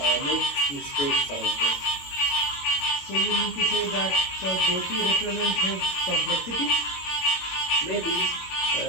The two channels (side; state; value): right; late; 22 ms